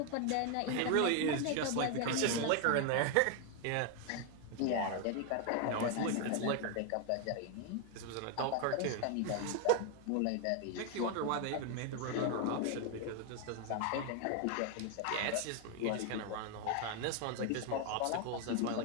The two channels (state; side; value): different; both; correlation 0.01